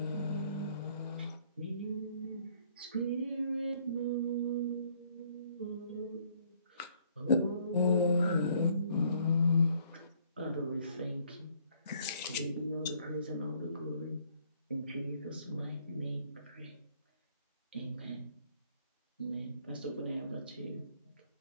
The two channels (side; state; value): both; inverted; correlation -0.64